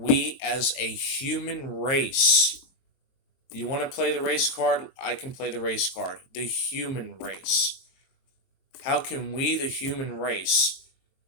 as a human race, you want to play the race card? I can play the race card. The human race. How can we, the human race,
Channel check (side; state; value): right; late; 22 ms